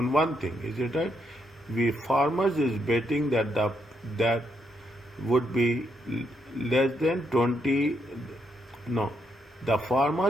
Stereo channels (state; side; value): normal; both; correlation 0.78